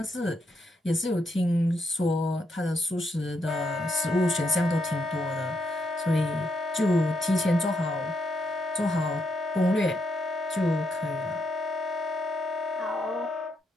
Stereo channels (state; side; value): normal; both; correlation 0.79